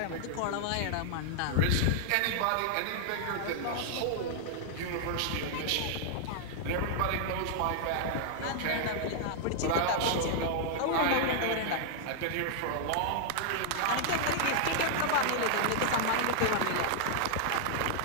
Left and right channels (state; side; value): different; both; correlation -0.01